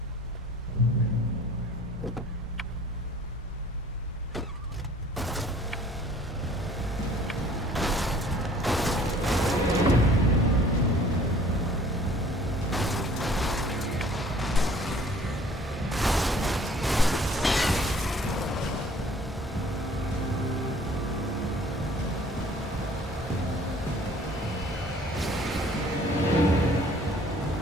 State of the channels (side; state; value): both; normal; correlation 0.53